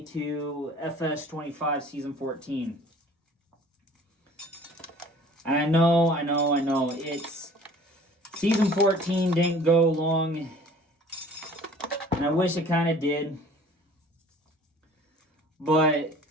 to FS25 Season 14. And I know, it's... Season 14 didn't go long, and I wish it kind of did. But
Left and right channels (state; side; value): normal; both; correlation 0.49